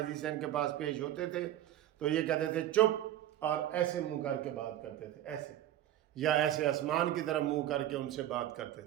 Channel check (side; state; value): left; quieter; 12.6 dB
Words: عیسیٰ ان کے پاس پیش ہوتے تھے تو یہ کہتے تھے چپ، اور ایسے منہ کر کے بات کرتے تھے، ایسے، یا ایسے آسمان کی طرف منہ کر کے ان سے بات کرتے